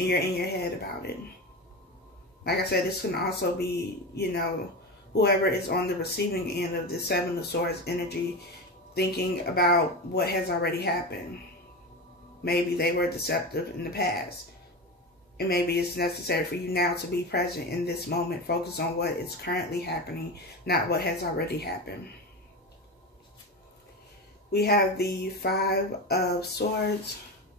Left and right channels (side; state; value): both; normal; correlation 0.23